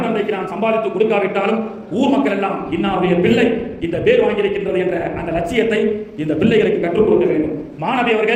தந்தைக்கு நான் சம்பாதித்து கொடுக்காவிட்டாலும் ஊர் மக்கள் எல்லாம் இன்னாருடைய பிள்ளை இந்த பேர் வாங்கியிருக்கின்றது என்ற அந்த லட்சியத்தை இந்த பிள்ளைகளுக்கு கற்றுக் கொடுக்க வேண்டும். மாணவி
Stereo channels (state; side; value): identical; both; correlation 1.00